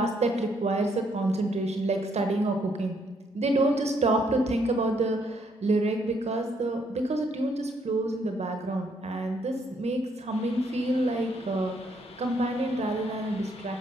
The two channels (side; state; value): both; normal; correlation 0.71